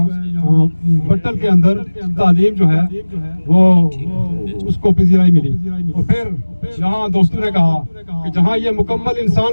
بٹل کے اندر تعلیم جو ہے وہ اس کو پذیرائی ملی۔ اور پھر جہاں دوستوں نے کہا کہ جہاں یہ مکمل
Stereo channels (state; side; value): inverted; both; correlation -1.00